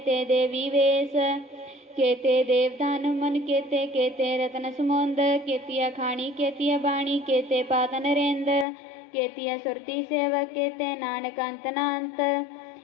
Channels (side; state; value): right; drops out; at 8.7 s